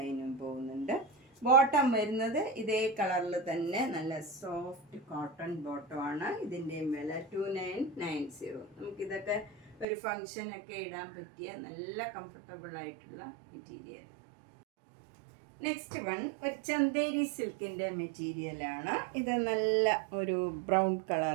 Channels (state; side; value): drops out; left; at 9.9 s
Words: പോകുന്നുണ്ട്. ബോട്ടം വരുന്നത് ഇതേ കളറിൽ തന്നെ നല്ല സോഫ്റ്റ് കോട്ടൺ ബോട്ടമാണ്. ഇതിൻ്റെയും വില 2990. നമുക്കിതൊക്കെ ഒരു ഫങ്ഷനൊക്കെ ഇടാൻ പറ്റിയ നല്ല കംഫർട്ടബിൾ ആയിട്ടുള്ള മെറ്റീരിയൽ. നെക്സ്റ്റ് വൺ ഒരു ചന്തേരി സിൽക്കിൻ്റെ മെറ്റീരിയലാണ്. ഇത് നല്ല ഒരു ബ്രൗൺ